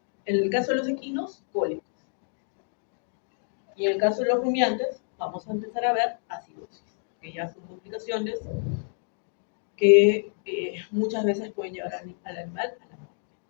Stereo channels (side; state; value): right; silent; 59 dB below the other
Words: en el caso de los equinos, cólicos. Y en el caso de los rumiantes, vamos a empezar a ver acidosis, que ya son complicaciones que muchas veces pueden llevar al animal a la muerte.